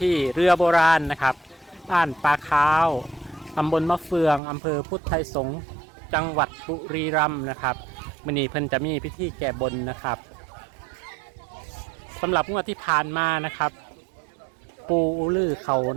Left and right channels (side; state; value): left; drops out; at 4.4 s